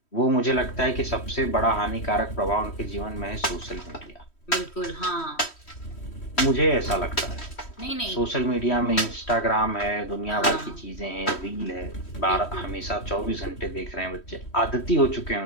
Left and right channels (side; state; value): right; late; 3.1 ms